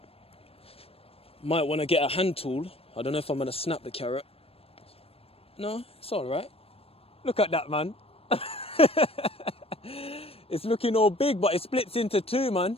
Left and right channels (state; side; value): late; right; 0.28 ms